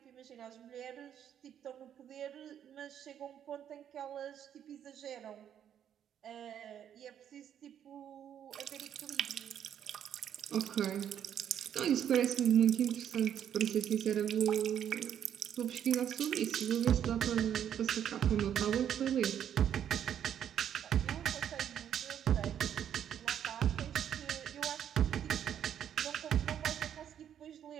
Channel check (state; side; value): quieter; left; 9.5 dB